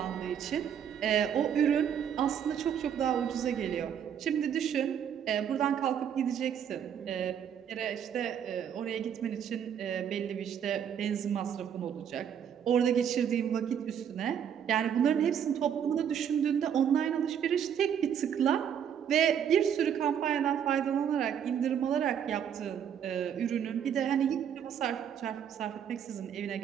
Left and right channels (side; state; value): left; quieter; 8.6 dB